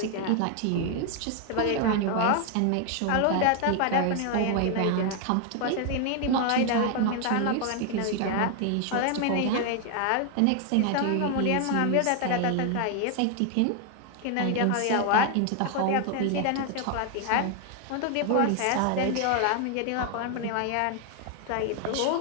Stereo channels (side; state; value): both; different; correlation 0.00